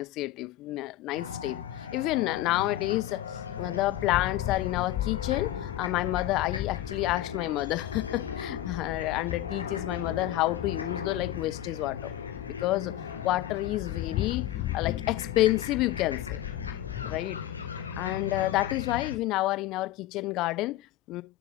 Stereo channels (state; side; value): quieter; right; 14.2 dB